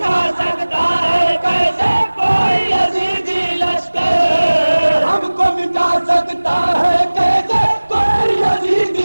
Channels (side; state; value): both; inverted; correlation -1.00